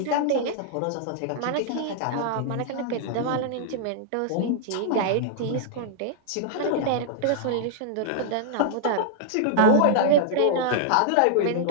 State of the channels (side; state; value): both; different; correlation -0.01